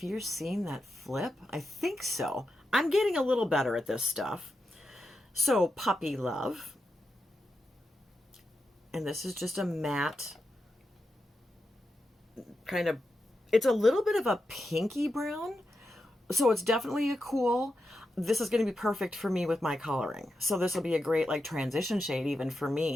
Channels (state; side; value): normal; both; correlation 0.88